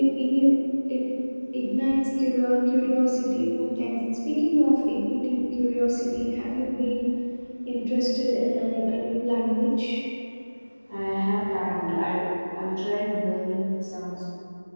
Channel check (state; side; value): inverted; both; correlation -1.00